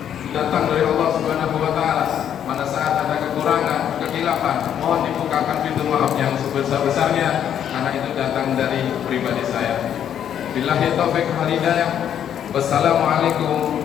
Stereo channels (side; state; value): right; quieter; 9.5 dB